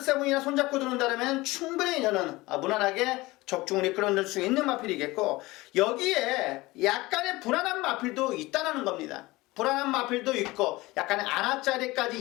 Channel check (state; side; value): quieter; right; 20.6 dB